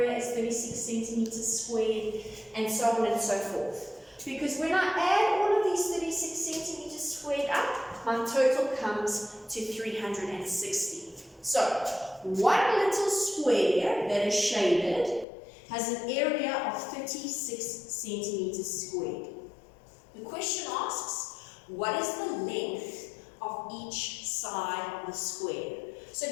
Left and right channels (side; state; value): right; drops out; at 15.2 s